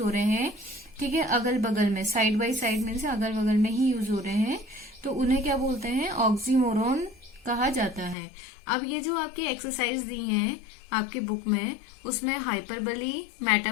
रहे हैं, ठीक है, अगल बगल में, साइड बाय साइड में से अगल बगल में ही यूज हो रहे हैं, तो उन्हें क्या बोलते हैं, ऑक्सीमोरोन कहा जाता है। अब ये जो आपकी एक्सरसाइज दी हैं आपकी बुक में, उसमें हाइपरबली,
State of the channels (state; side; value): drops out; right; at 8.2 s